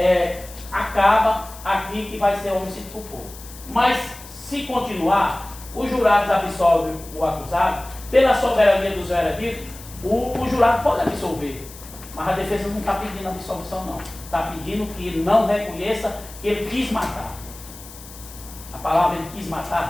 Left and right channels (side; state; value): left; noise; hiss, 17 dB below the sound